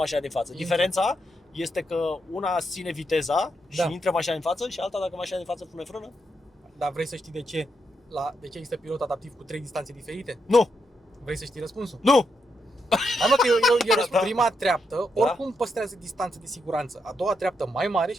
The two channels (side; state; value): both; normal; correlation 0.82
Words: din față. Intră. Diferența este că una ține viteza și Da. intră mașina din față și alta dacă mașina din față pune frână. Dar vrei să știi de ce? De ce există pilot adaptiv cu 3 distanțe diferite? Nu! Vrei să știi răspunsul? Nu! Hai mă că eu răspund. Da. Prima treaptă, Da. oricum păstrează distanță de siguranță. A doua treaptă mai mare